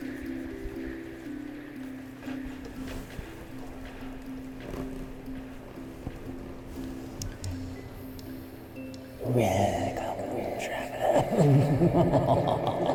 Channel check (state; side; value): identical; both; correlation 1.00